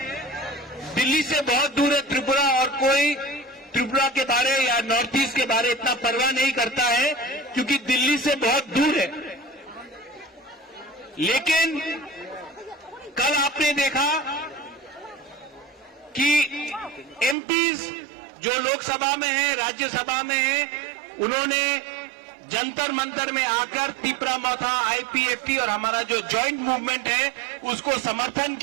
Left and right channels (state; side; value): drops out; left; at 17.4 s